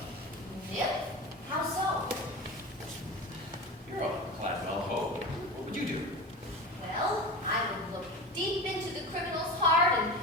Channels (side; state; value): both; normal; correlation 0.28